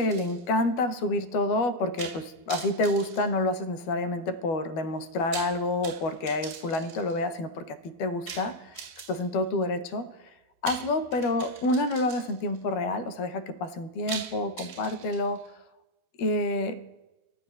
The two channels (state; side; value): late; right; 12 ms